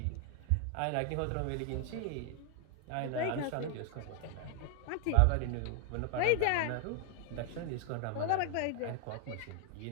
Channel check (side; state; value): both; different; correlation 0.00